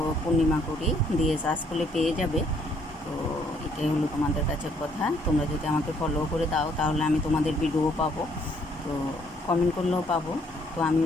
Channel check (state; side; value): normal; both; correlation 0.66